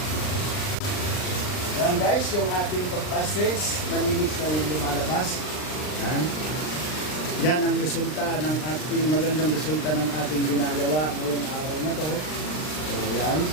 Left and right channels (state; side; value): late; right; 39 ms